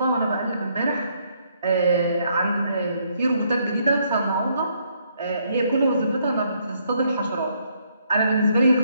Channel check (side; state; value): both; inverted; correlation -0.71